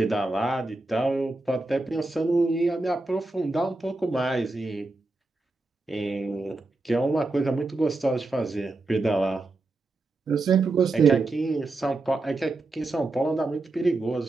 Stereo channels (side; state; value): left; quieter; 3.1 dB